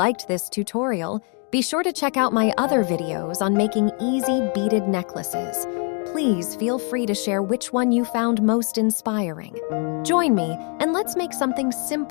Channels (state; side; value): quieter; right; 38.0 dB